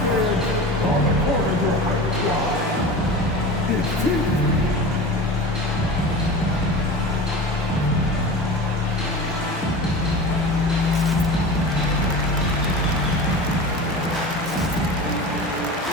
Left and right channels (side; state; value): both; normal; correlation 0.33